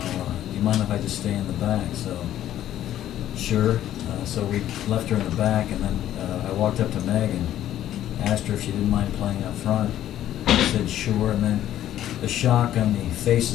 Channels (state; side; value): quieter; right; 12.1 dB